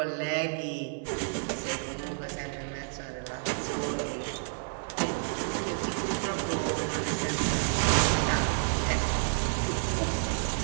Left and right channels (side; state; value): left; silent; 58 dB below the other